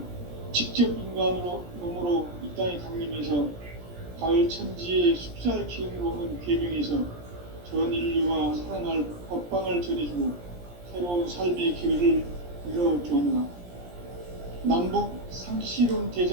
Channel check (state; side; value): late; left; 17 ms